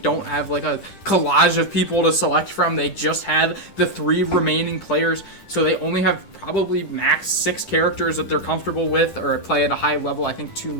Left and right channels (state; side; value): late; right; 10 ms